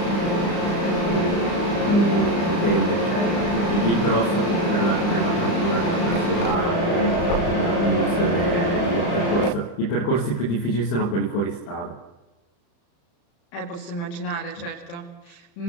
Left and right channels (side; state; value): right; late; 35 ms